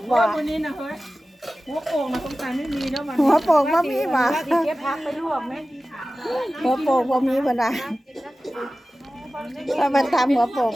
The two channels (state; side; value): normal; both; correlation 0.96